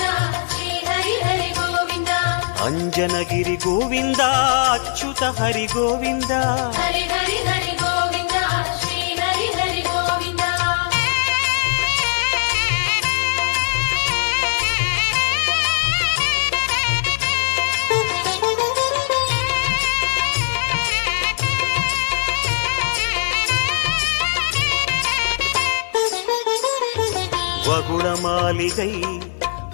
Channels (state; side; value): silent; right; 62 dB below the other